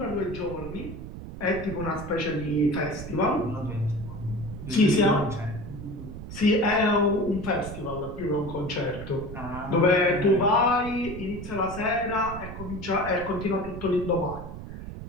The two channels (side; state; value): right; noise; rumble, 10 dB below the sound